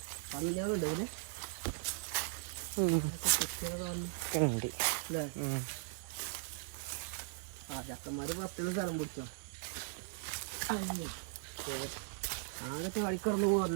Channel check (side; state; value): left; silent; digital silence